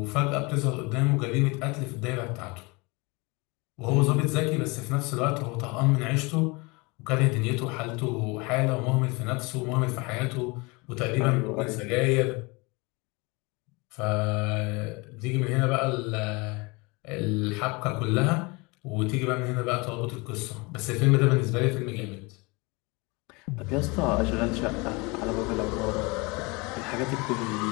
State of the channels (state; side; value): quieter; right; 26.8 dB